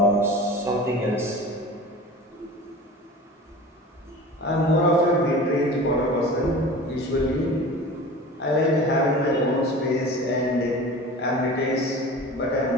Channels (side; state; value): both; normal; correlation 0.37